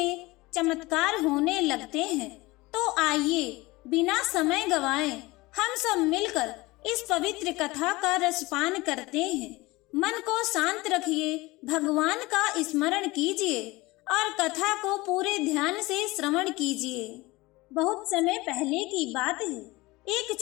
चमत्कार होने लगते हैं। तो आइए बिना समय गवाए हम सब मिलकर इस पवित्र कथा का रसपान करते हैं। मन को शांत रखिए, भगवान का स्मरण कीजिए और कथा को पूरे ध्यान से श्रवण कीजिए। बहुत समय पहले की बात है, एक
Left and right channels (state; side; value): quieter; right; 21.3 dB